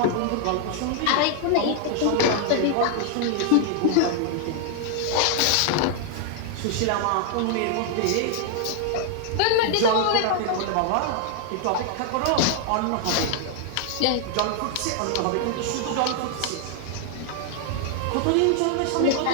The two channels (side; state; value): both; different; correlation 0.00